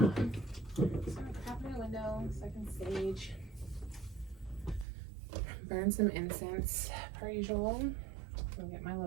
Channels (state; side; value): drops out; left; at 4.9 s